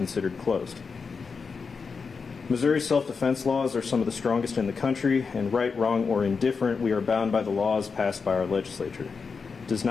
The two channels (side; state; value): right; quieter; 5.2 dB